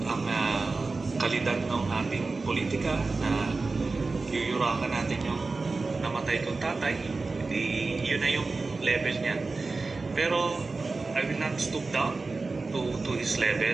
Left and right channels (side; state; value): left; quieter; 3.8 dB